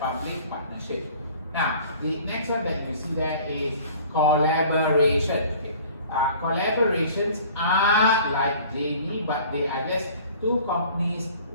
partnership. Now, the next one that you see there is collaboration. Okay. Collaborations are like JV, but they are just two companies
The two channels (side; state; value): both; inverted; correlation -0.48